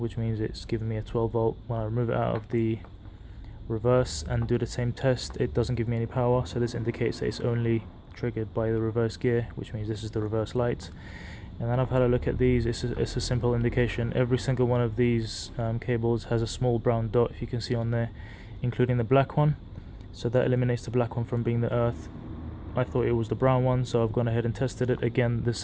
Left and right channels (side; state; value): both; identical; correlation 1.00